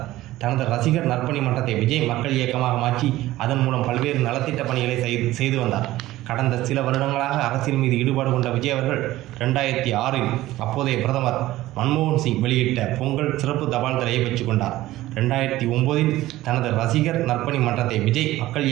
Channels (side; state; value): left; quieter; 16.2 dB